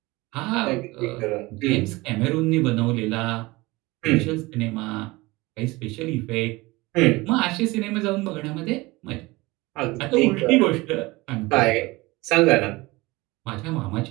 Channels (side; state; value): left; quieter; 21.9 dB